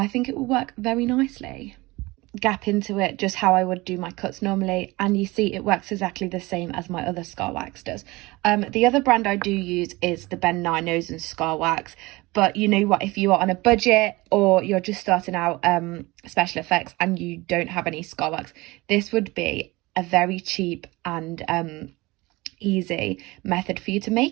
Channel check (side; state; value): left; quieter; 22.0 dB